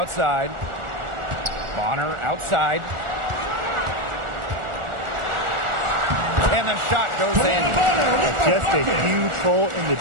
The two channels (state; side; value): late; left; 1.4 ms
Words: Bonner outside. And the shot goes in. Just a huge hole in the